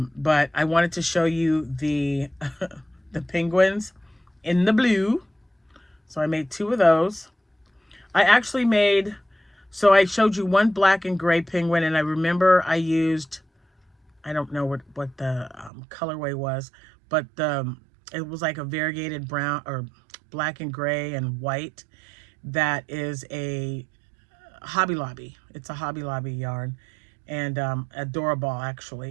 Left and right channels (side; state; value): left; drops out; at 15.7 s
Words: I wanted to show you the the penguins in the blue. So I made 2 of those. I actually so I showed you one black and gray penguin, and I remember I used, I don't know what the colorway was, but it was like a variegated brown or black and gray and white. That is a Hobby Lobby. It's a Hobby Lobby yarn, and adorable